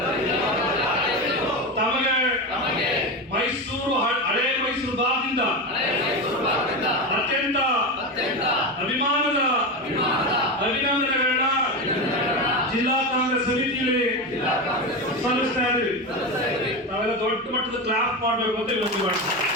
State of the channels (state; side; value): normal; both; correlation 0.19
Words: ತಮಗೆ ಮೈಸೂರು ಹಳೆ ಮೈಸೂರು ಭಾಗದಿಂದ ಅತ್ಯಂತ ಅಭಿಮಾನದ ಅಭಿನಂದನೆಗಳನ್ನ ಜಿಲ್ಲಾ ಕಾಂಗ್ರೆಸ್ ಸಮಿತಿಯಲ್ಲಿ ಸಲ್ಲಿಸ್ತಾ ಇದ್ದೀವಿ. ನಾವೆಲ್ಲ ದೊಡ್ಡ ಮಟ್ಟದ ಕ್ಲಾಪ್ ಮಾಡಬೇಕು ಅಂತ ವಿನಂತಿ ಮಾಡ್ತೀವಿ.